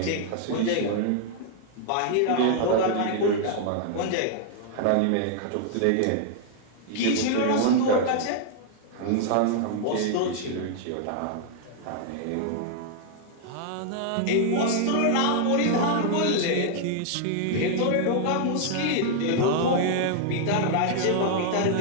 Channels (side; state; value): both; different; correlation -0.01